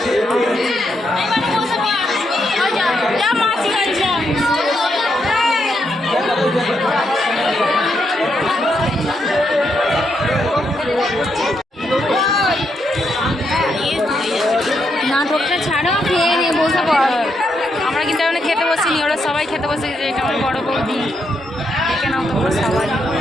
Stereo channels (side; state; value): both; normal; correlation 0.80